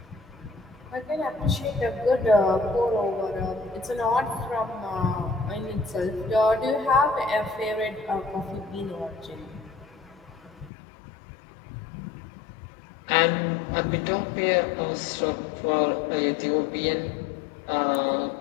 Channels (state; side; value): drops out; right; at 10.7 s